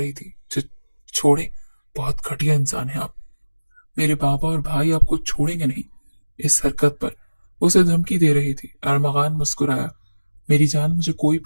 थी। छोड़े, बहुत घटिया इंसान है आप। मेरे बाबा और भाई आपको छोड़ेंगे नहीं। इस हरकत पर उसे धमकी दे रही थी। अरमगान मुस्कुराया। मेरी जान, मुझे कोई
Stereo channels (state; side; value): inverted; both; correlation -1.00